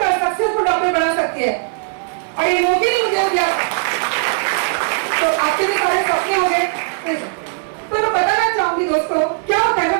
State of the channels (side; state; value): left; silent; 57 dB below the other